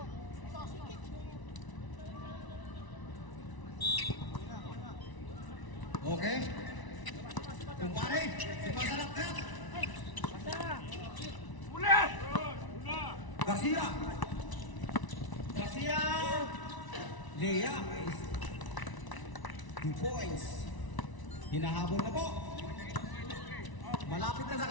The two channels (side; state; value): right; late; 1.0 ms